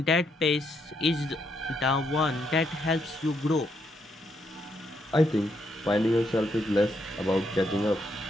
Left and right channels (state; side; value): normal; both; correlation 0.76